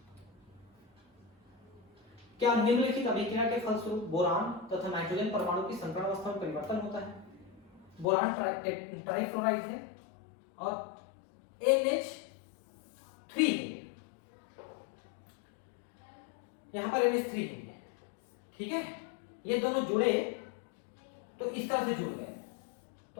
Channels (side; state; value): right; drops out; at 8.1 s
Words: क्या निम्नलिखित अभिक्रिया के फलस्वरूप बोरान तथा नाइट्रोजन परमाणु की संकरण अवस्था में परिवर्तन होता है? बोरान ट्राइफ्लोराइड है और NH3 है, यहां पर NH3 है, ठीक है। ये दोनों जुड़े तो इस तरह से जुड़ गए।